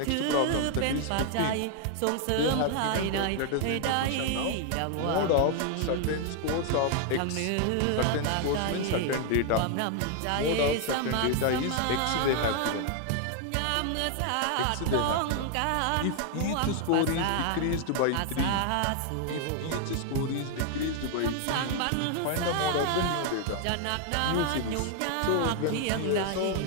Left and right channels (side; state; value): both; different; correlation 0.00